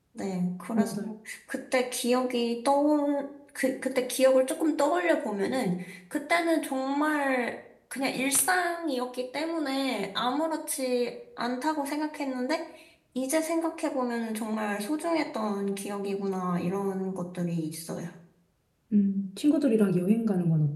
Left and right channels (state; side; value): identical; both; correlation 1.00